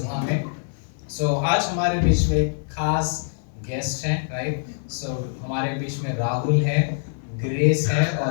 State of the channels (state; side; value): silent; right; 62 dB below the other